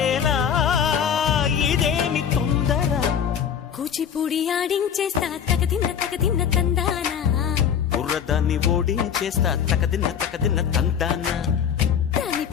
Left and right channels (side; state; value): right; quieter; 8.2 dB